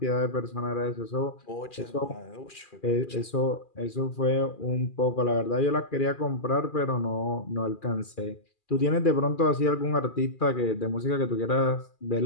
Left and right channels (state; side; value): late; right; 2.4 ms